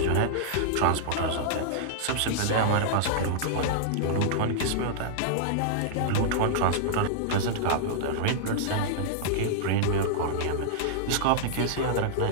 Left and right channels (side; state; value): both; different; correlation -0.01